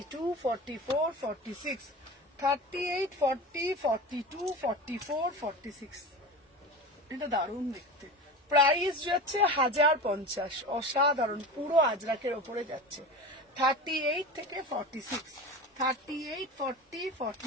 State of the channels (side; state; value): both; normal; correlation 0.30